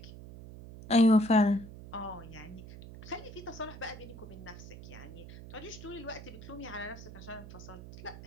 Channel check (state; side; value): noise; right; hum, 14 dB below the sound